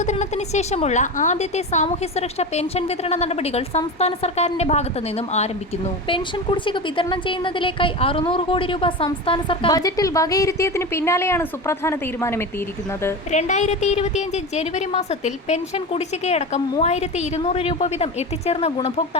ശേഷമുള്ള ആദ്യത്തെ സാമൂഹ്യ സുരക്ഷാ പെൻഷൻ വിതരണ നടപടികൾ സംസ്ഥാന സർക്കാരിന്റെ ഭാഗത്തു നിന്നും ആരംഭിക്കുന്നു. പെൻഷൻ കുടിശ്ശിക വിതരണം ചെയ്യുന്നതിലേക്കായി 600 കോടി രൂപ സംസ്ഥാന സർക്കാർ ബജറ്റിൽ വകയിരുത്തിയതിന് പിന്നാലെയാണ് സുപ്രധാന തീരുമാനമെത്തിയിരിക്കുന്നത്. 2025 ജനുവരി മാസത്തിൽ പെൻഷൻ കുടിശ്ശികയടക്കം 3200 രൂപ വീതം എത്തിച്ചേർന്ന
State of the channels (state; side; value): normal; both; correlation 0.25